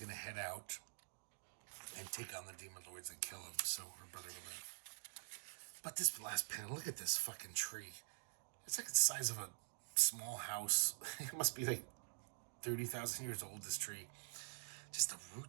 to head out and take on the demon lords and kill them so her brother will live. But this last panel, look at this fucking tree. It's like the size of a small house. It must be like 30,000 years old, this tree. Just the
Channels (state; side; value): silent; left; digital silence